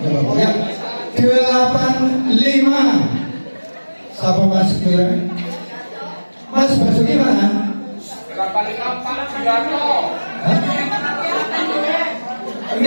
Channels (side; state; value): both; inverted; correlation -1.00